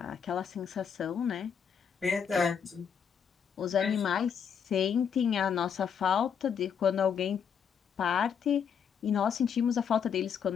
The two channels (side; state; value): right; quieter; 7.3 dB